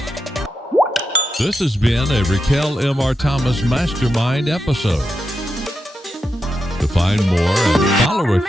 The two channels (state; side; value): normal; both; correlation 0.87